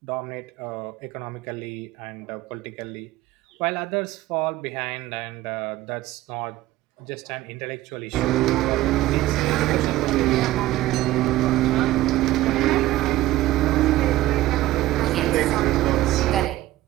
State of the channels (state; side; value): quieter; left; 16.1 dB